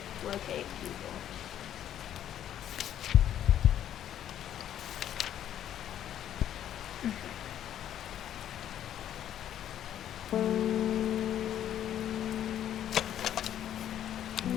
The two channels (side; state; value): right; quieter; 10.8 dB